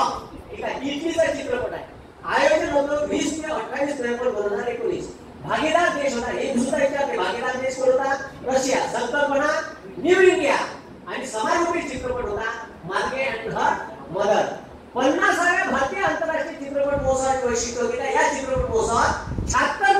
ठीक आहे, इटलीचा चित्रपट आहे. आयोजन होतं 20 ते 28 नोव्हेंबर 2019. भागीदार देश होता, हे दुसरा विचारते, भागीदार देश कोणता? रशिया. संकल्पना न्यू इंडिया आणि समाजोपयोगी चित्रपट होता मार्गे अँड हर मदर. 50व्या भारतीय आंतरराष्ट्रीय चित्रपट महोत्सवाचे वैशिष्ट्य होते, या चित्रपट महोत्सवात 76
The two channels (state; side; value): identical; both; correlation 1.00